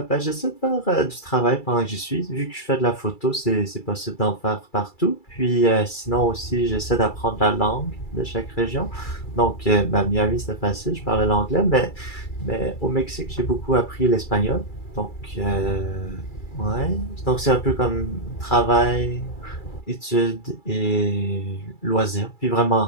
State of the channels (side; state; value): right; late; 2.3 ms